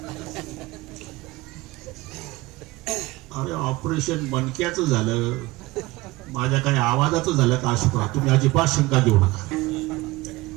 अरे ऑपरेशन मणक्याचं झालं, माझ्या काही आवाजाचं झालं का अशुक्रा? तुम्ही अजिबात शंका घेऊ नका.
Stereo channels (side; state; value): left; quieter; 20.3 dB